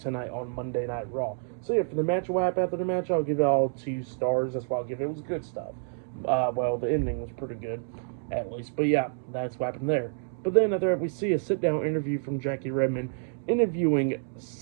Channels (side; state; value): left; silent; digital silence